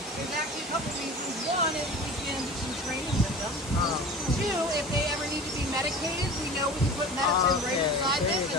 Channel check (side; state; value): both; normal; correlation 0.37